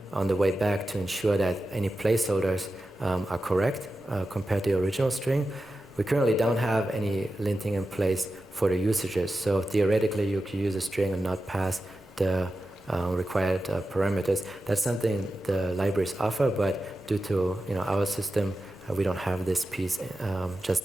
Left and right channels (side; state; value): both; normal; correlation 0.92